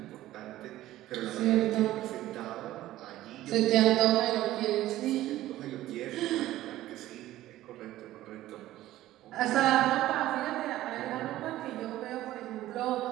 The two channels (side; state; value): left; quieter; 14.9 dB